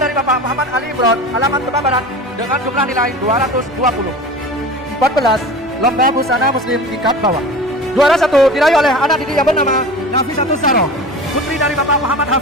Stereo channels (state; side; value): normal; both; correlation 0.34